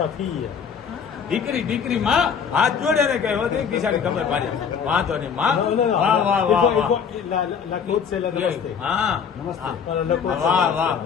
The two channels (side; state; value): right; quieter; 6.9 dB